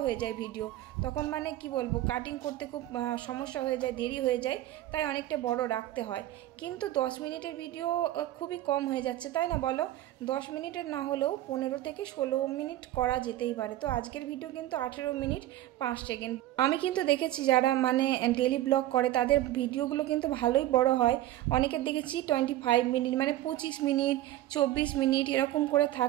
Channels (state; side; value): quieter; left; 14.5 dB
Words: হয়ে যায় ভিডিও, তখন মানে কি বলবো, কাটিং করতে খুব সমস্যা হয়ে যায়, দেরি হয়ে যায়, তাই অনেকটা বড় রাখতে হয়। কিন্তু 10 মিনিটের ভিডিও খুবই কম হয়ে যাচ্ছে, তাই না বলো? 10 মিনিটের না হলেও 15 থেকে 16 মিনিট করা যেতেই পারে। তো আজকের ভিডিও কিন্তু 18 মিনিট 5 সেকেন্ড। আমি কিন্তু দেখেছি যারা মানে ডেলি ব্লগ করে তাদের ভিডিওগুলো কিন্তু ভালোই বড় হয়। অনেকের দেখেছি 25 মিনিট মানে 25 মিনিট 24 মিনিট এরকম করে